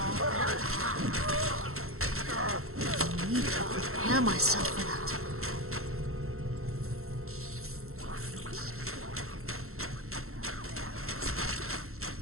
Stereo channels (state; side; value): late; left; 0.62 ms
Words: I need to prepare myself for that.